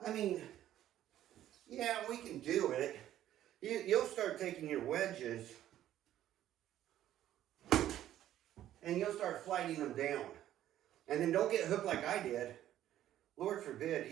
I mean, yeah, we can do it. You'll start taking your wedges and you'll start flighting them down. And then don't get hooked like I did. Lord forbid,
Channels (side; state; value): left; quieter; 12.4 dB